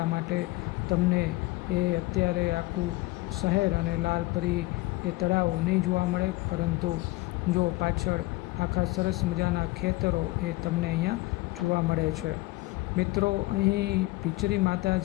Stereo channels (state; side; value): quieter; right; 20.8 dB